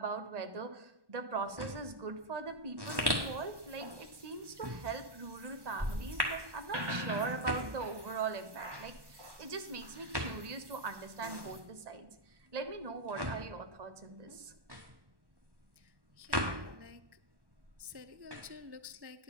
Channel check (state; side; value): late; left; 1.1 ms